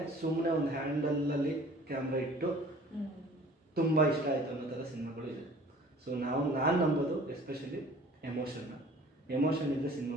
ಸುಮ್ಮನೆ ಒಂದು ಹ್ಯಾಂಡಲಲ್ಲಿ ಕ್ಯಾಮ್ರಾ ಇಟ್ಟು ತುಂಬ ಇಷ್ಟ ಆಯಿತು ಅನ್ನೋ ಥರ ಸಿನಿಮಾಗಳು ಇದೆ. ಸೊ ನಾನು ನಂಬೋದು ಎಸ್ಪೆಷಲಿ ಎಮೋಷನ್ ಇದ್ದರೆ ಸಿನಿಮಾ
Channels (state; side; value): normal; both; correlation 0.49